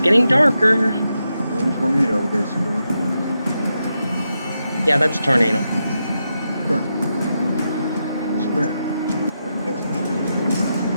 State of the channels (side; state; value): both; inverted; correlation -0.86